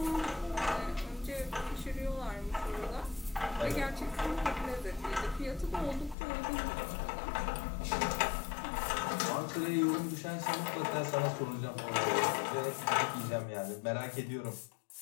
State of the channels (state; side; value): drops out; right; at 6.2 s